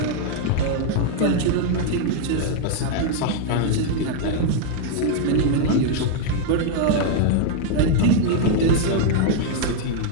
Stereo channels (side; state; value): both; different; correlation 0.00